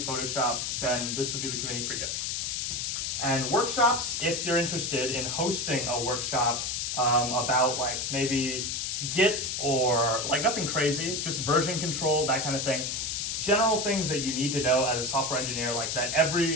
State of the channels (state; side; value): noise; left; hiss, 2 dB below the sound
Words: Photoshop, then this would be the committee for you. And workshops, if you're interested in hosting a workshop about like maybe Git or like nothing crazy, just version control, that kind of thing. General things that you need to know as a software engineer, like that